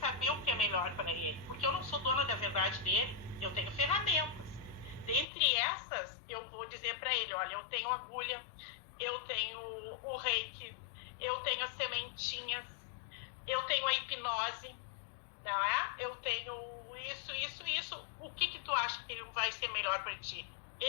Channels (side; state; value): right; drops out; at 5.2 s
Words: o que é melhor para ele, porque eu não sou dona da verdade dele, eu tenho ferramentas. Dentre essas, eu vou dizer para ele, olha, eu tenho agulha, eu tenho o reiki, eu tenho as sementinhas, eu tenho a hipnose, não é? Eu tenho isso. O que tu acha que vai ser melhor para ti?